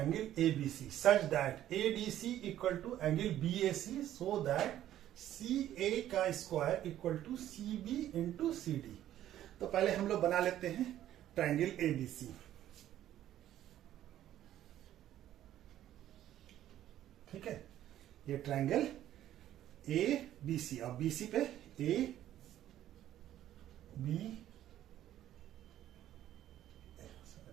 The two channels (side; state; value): left; quieter; 12.3 dB